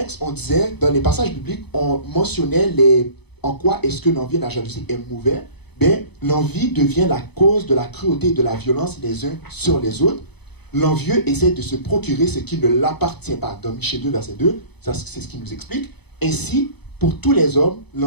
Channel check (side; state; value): right; late; 0.98 ms